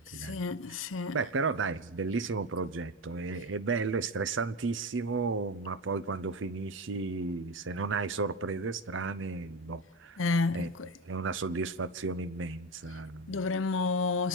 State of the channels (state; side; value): normal; both; correlation 0.20